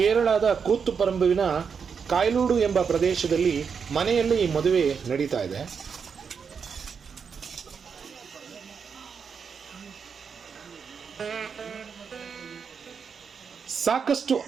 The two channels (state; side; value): quieter; left; 6.3 dB